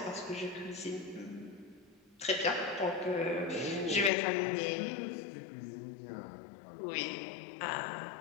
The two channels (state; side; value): drops out; right; at 4.1 s